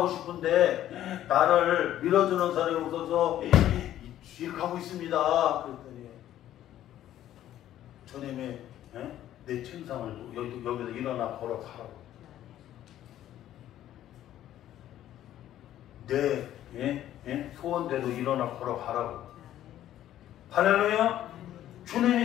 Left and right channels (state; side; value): quieter; right; 12.3 dB